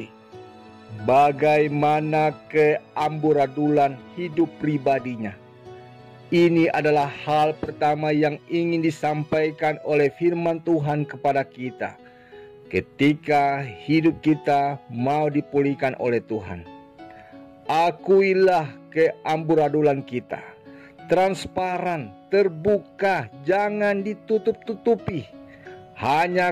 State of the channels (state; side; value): identical; both; correlation 1.00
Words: bagaimana keamburadulan hidup pribadinya. Ini adalah hal pertama yang ingin disampaikan oleh firman Tuhan kepada kita. ketika hidup kita mau dipulihkan oleh Tuhan. Akuilah keamburadulan kita, transparan, terbuka, jangan ditutup-tutupi.